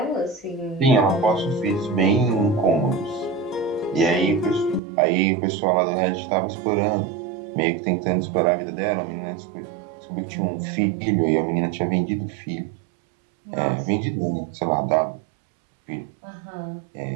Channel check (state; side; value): drops out; left; at 4.8 s